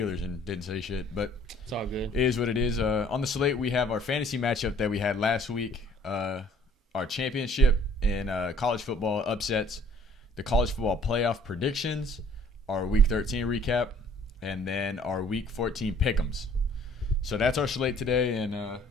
and didn't say shit. But it's all good. It is what it is. On the slate, we have our fantasy matchup that we had last week, our championship in college football upsets, the college football playoff predictions, our Week 13 recap, and then our Week 14 pick'ems. So that's our slate today, and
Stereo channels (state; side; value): normal; both; correlation 0.57